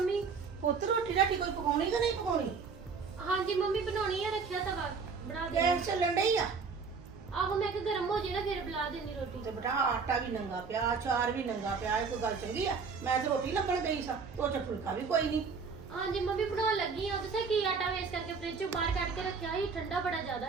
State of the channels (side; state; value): left; quieter; 5.2 dB